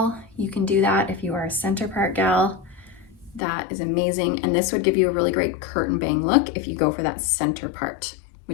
you can do that. If you are a center part gal, that is amazing. And this would give you a really great curtain bang look if you go for that center part,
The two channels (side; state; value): right; drops out; at 3.4 s